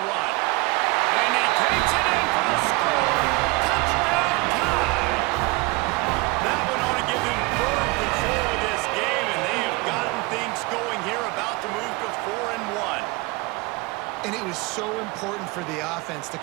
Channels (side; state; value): left; quieter; 24.4 dB